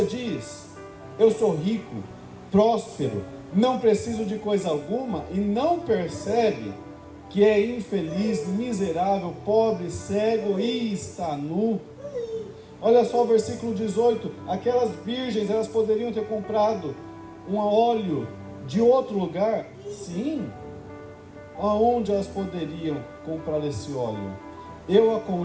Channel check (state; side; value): identical; both; correlation 1.00